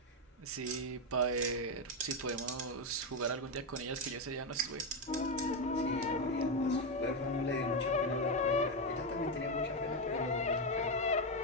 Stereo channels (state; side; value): normal; both; correlation 0.08